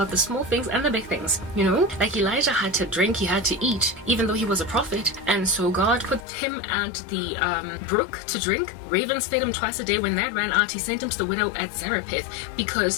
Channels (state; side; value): drops out; right; at 6.2 s